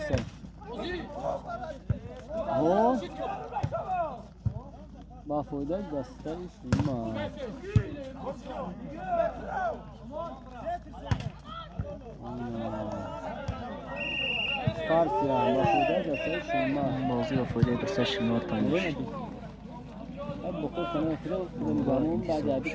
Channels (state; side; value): identical; both; correlation 1.00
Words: او با فایده دستش شما. کارت یا با فایده دستش شما. بازی با فایده دستش شما تانیش. اب بخور کنه فیلم بعد بعدی